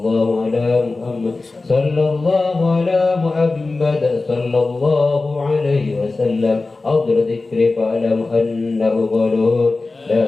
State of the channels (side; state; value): right; quieter; 3.5 dB